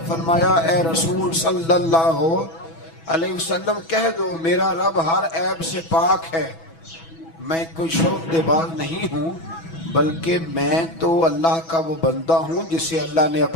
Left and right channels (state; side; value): late; right; 6.1 ms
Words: فرمایا اے رسول صلی اللہ علیہ وسلم کہہ دو میرا رب ہر عیب سے پاک ہے، میں کوئی شعبدے باز نہیں ہوں، بلکہ میں تو اللہ کا وہ بندہ ہوں جسے اللہ نے